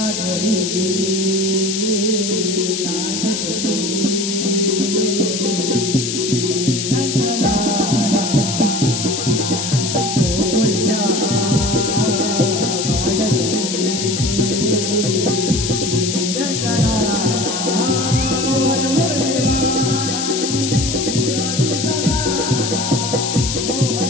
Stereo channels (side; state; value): left; noise; hiss, 3 dB below the sound